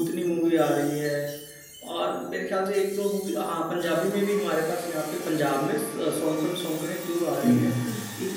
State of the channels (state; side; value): identical; both; correlation 1.00